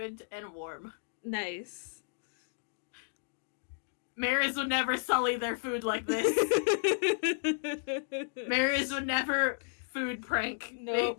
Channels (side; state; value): right; silent; digital silence